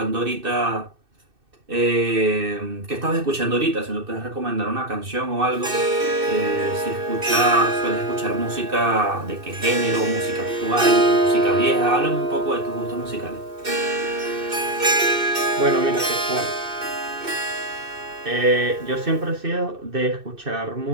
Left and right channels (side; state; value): left; late; 2.6 ms